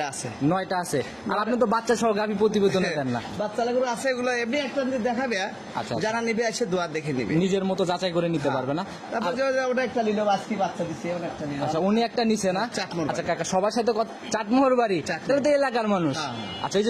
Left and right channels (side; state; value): both; identical; correlation 1.00